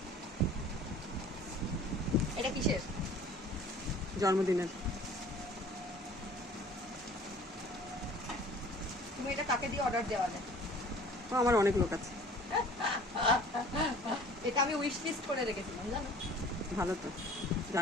এটা কিসের? জন্মদিনের। তুমি এটা কাকে দিয়ে অর্ডার দেওয়া যায়? ও আমার অনেক লোক আছে। এটা আমি উইশ লিস্ট করে রেখেছিলাম, জানো? ভালো তো,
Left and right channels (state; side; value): normal; both; correlation 0.48